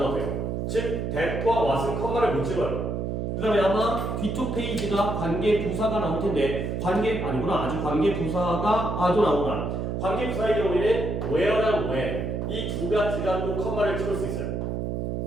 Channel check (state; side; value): noise; right; hum, 2 dB below the sound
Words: 즉 that과 what은 컴마를 못 찍어요. 그 다음에 아마 뒤쪽 페이지가 관계부사가 나올 텐데 아주 관계부사가 아도 나오나 관계부사의 경우에는 where랑 when 이 두 가지가 또 컴마를 찍을 수 있어요.